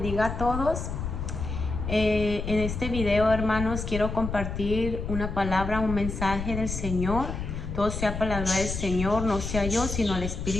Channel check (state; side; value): noise; left; rumble, 5 dB below the sound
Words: a todos. En este video, hermanos, quiero compartir una palabra, un mensaje del Señor. Todo sea para la gloria del Señor, no sea yo, sino el